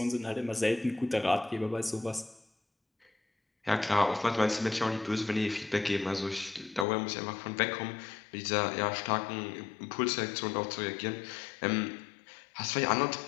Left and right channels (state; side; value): drops out; right; at 6.9 s